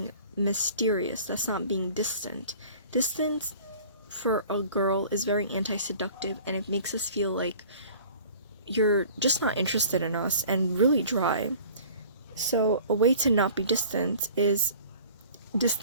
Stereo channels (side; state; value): both; inverted; correlation -0.48